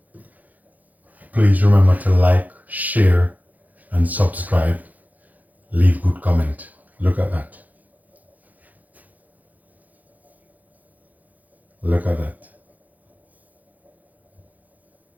Please remember to like, share, and subscribe. Leave good comment. Look at that. Look at that.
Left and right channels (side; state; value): left; late; 0.080 ms